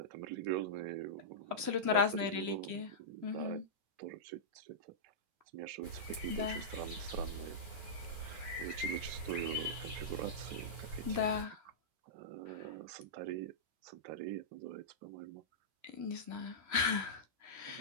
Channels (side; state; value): left; late; 3.0 ms